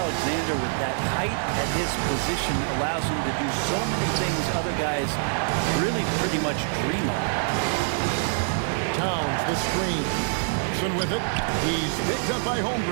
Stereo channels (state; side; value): silent; left; digital silence